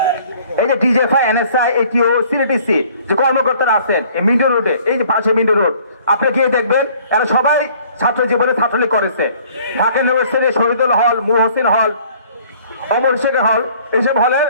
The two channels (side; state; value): both; inverted; correlation -0.56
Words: এই যে ডিজেফআই, এনএসআই, এটিও, সিটিসি যে কর্মকর্তারা আছেন এই মিন্টো রোডে, এই যে পাশে মিন্টো রোড, আপনি গিয়ে দেখবেন এরা সবাই ছাত্র জীবনে ছাত্রলীগ করেছে। ঢাকা ইউনিভার্সিটি শহীদুল হল, মুহসিন হল, অমর শেখর হল, এইসব হলে